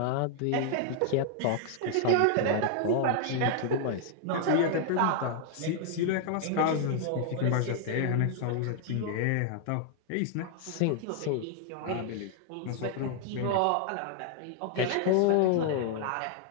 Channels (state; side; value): different; both; correlation 0.00